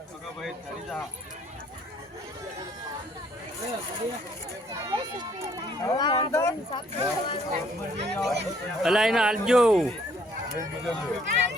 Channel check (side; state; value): both; normal; correlation 0.63